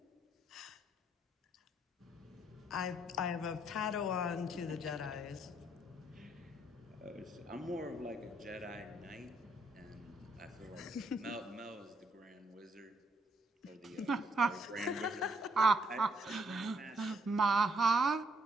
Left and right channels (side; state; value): both; normal; correlation 0.71